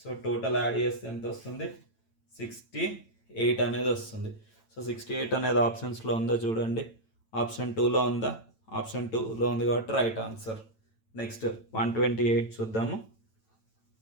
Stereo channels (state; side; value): late; right; 9.0 ms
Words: టోటల్ యాడ్ చేస్తే ఎంత వస్తుంది? 68 అనేది వస్తుంది. సో 68 అనేది ఆప్షన్స్లో ఉందో చూడండి. ఆప్షన్ 2లో ఉందా? ఆప్షన్ 2లో ఉంది కాబట్టి రైట్ ఆన్సర్. నెక్స్ట్ 128 చూద్దాము.